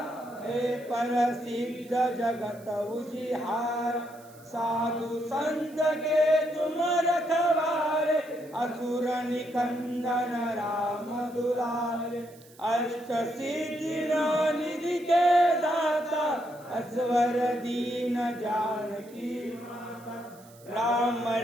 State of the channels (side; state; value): right; noise; hiss, 25 dB below the sound